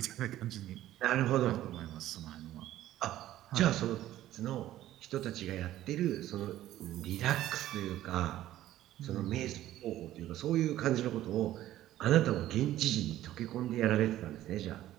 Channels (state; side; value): quieter; left; 13.8 dB